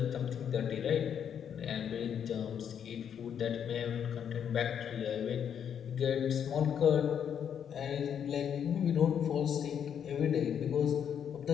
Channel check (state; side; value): quieter; right; 8.4 dB